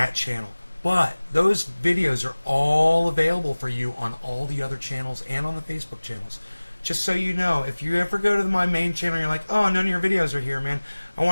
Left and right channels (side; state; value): both; inverted; correlation -1.00